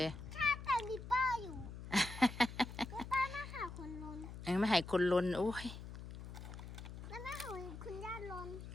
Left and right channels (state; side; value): noise; left; hum, 10 dB below the sound